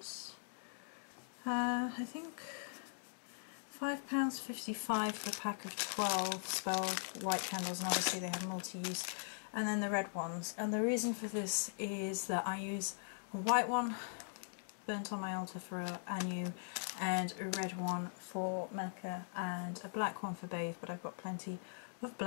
I think £5.55 for a pack of 12 spell white candles, and obviously they have multi-use. And then the red ones. And the reason for this is that I use a white one burnt on my altar for Anu, and a red one for Mecca, and a black one for Bathe, but I've got plenty of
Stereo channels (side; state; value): right; silent; digital silence